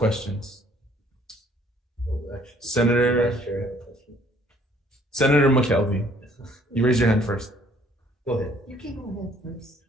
Senator McKelvey, you raise your hand first. Go ahead. You can go ahead first.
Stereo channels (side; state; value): both; normal; correlation 0.60